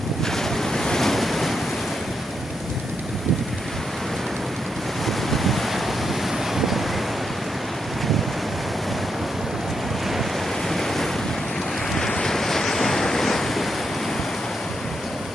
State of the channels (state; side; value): normal; both; correlation 0.81